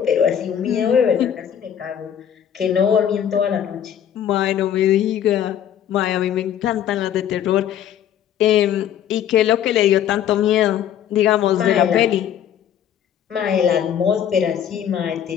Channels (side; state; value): right; quieter; 9.7 dB